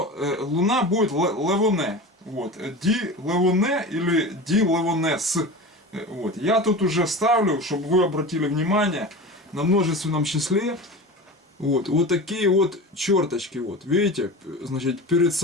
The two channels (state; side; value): normal; both; correlation 0.31